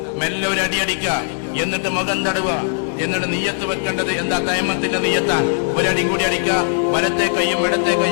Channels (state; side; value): silent; right; digital silence